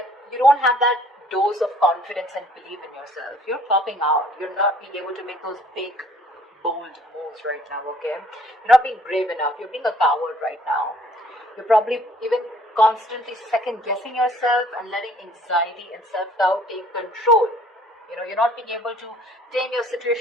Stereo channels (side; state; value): both; normal; correlation 0.58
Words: you don't have that dose of confidence and belief in yourself. You're popping out. You're not being able to make those big, bold moves right now, okay? You're not being brave enough. You're being a coward right now. You're probably even constantly second guessing yourself and letting anxiety and self-doubt take control. You know, you're not being able to tame your